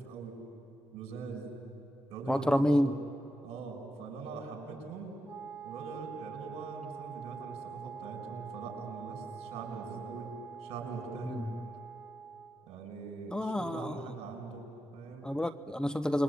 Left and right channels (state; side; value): normal; both; correlation 0.87